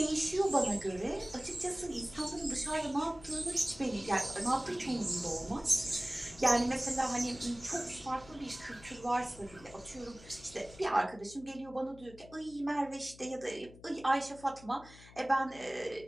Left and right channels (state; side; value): noise; left; hum, 20 dB below the sound